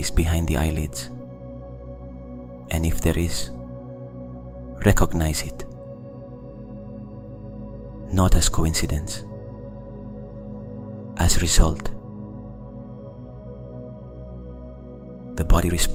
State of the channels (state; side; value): identical; both; correlation 1.00